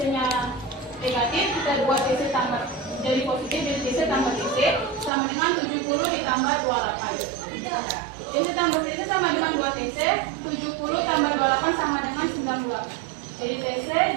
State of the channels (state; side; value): drops out; left; at 5.1 s